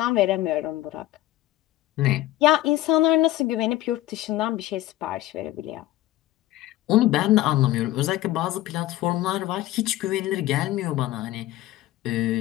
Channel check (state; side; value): quieter; right; 15.7 dB